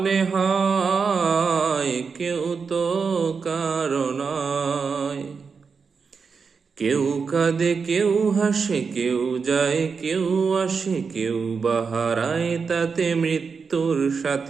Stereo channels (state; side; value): quieter; left; 5.4 dB